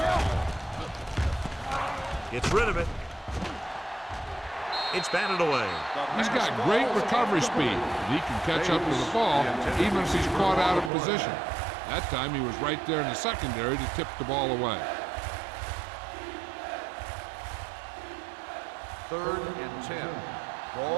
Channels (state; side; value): drops out; left; at 10.9 s